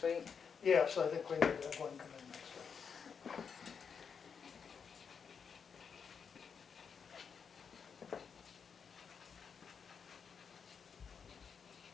week? Yes, I think we need to have one come in next week.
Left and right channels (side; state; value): right; quieter; 6.5 dB